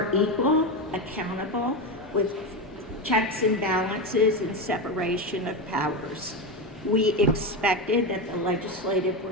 equal, accountable, with checks and balances and separation of powers. We expected that the legislative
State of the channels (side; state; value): both; normal; correlation 0.15